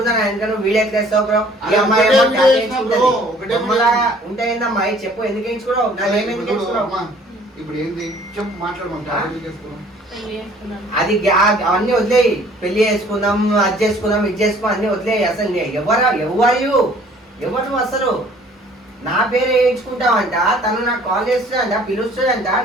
నా వెనక నువ్వు వీడియో చేస్తావు బ్రో. ఈ అమ్మాయి ఉంటాయిందమ్మా చెప్పు. ఎందుకు వేయించుకోవడం? నాకేమేమి వేయించుకోవడం? ఇప్పుడు ఏంది చెప్పు మాట్లాడమంటా. అది అవన్నీ వదిలేయి. పెళ్లి చేసుకుందాం, అది చేసుకుందాం, ఇది చేసుకుందాం అన్ని వదిలేయి. అసలు ఎవరు నువ్వు? అసలు నా పేరు వేయించుకుంటావంట. తను నాకు కాల్ చేస్తుందంట, పిలుస్తుందంట.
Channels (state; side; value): normal; both; correlation 0.55